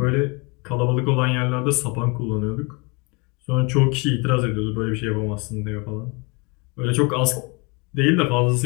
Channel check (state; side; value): quieter; right; 29.1 dB